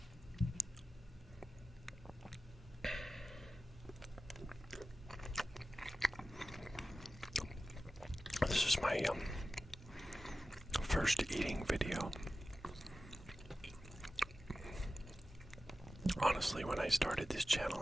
This is my first eating video. Honestly, when I started this channel,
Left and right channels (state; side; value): normal; both; correlation 0.94